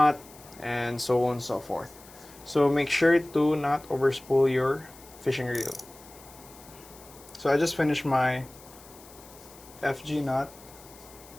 and so on and so forth. So make sure to not overspool your fishing reel. So I just finished my FG knot.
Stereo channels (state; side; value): noise; left; hiss, 21 dB below the sound